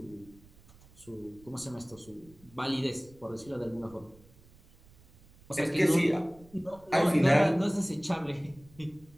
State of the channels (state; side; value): noise; right; rumble, 26 dB below the sound